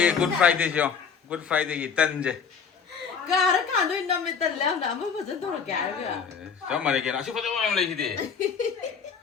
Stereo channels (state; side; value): quieter; right; 6.3 dB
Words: 굿 프라이데이죠. 굿 프라이데이 딴제. 가라 간도 남에 달라 나 아무 버전 돌게 알가. 정말 이게 아주 포도만 올리지.